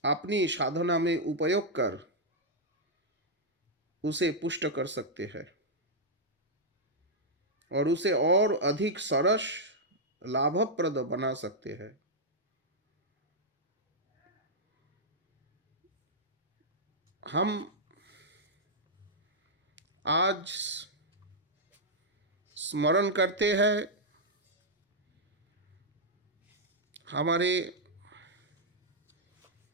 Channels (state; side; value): normal; both; correlation -0.06